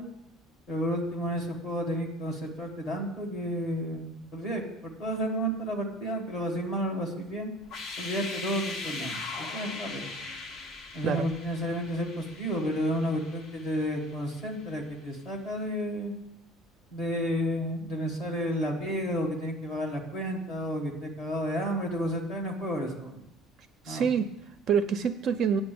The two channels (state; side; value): normal; both; correlation 0.47